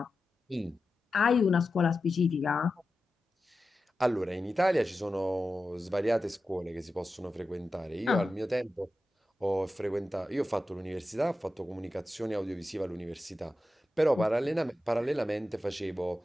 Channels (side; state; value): both; normal; correlation 0.92